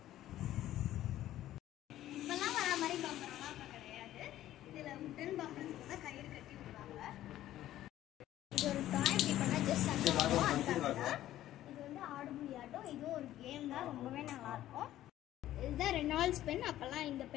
இப்போல்லாம் வர மாதிரி பம்பரம்லாம் இப்போ கிடையாது. இதில் உடன் பம்பரத்துக்கு தான் கயிறு கட்டி விடுவாங்க. இது ஒரு டாய், இப்படி பண்ணால் ஜஸ்ட் அதுக்காக தான். இது வந்து ஆடுபுலி ஆட்டம், இதுவும் ஒரு கேம் தான், ரொம்பவே நல்லாயிருக்கும். இதுதான் ரெனால்ட்ஸ் பென், அப்போல்லாம் இந்த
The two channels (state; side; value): quieter; right; 13.5 dB